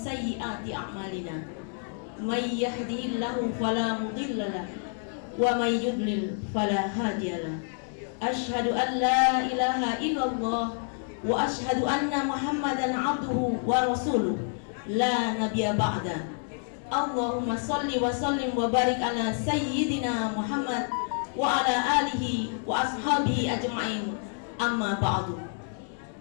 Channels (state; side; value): silent; right; 59 dB below the other